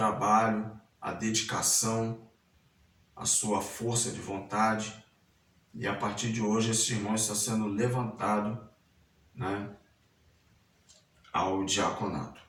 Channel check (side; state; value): both; identical; correlation 1.00